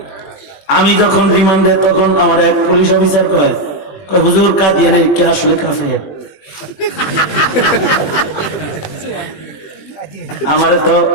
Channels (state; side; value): late; right; 21 ms